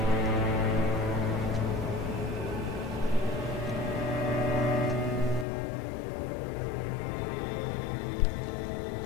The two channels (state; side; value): drops out; right; at 5.5 s